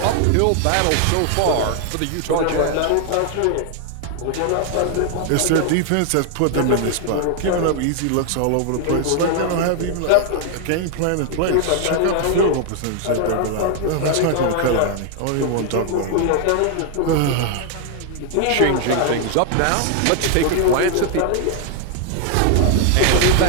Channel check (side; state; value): both; different; correlation 0.00